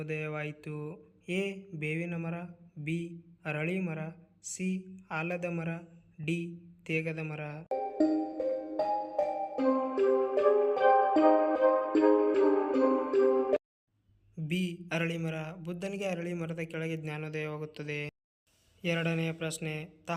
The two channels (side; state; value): both; identical; correlation 1.00